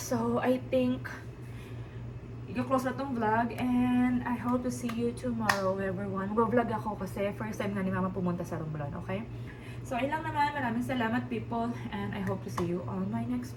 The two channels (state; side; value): identical; both; correlation 1.00